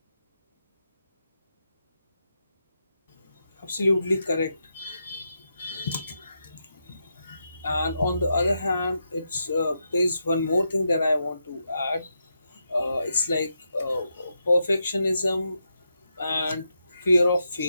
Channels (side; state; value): both; inverted; correlation -0.84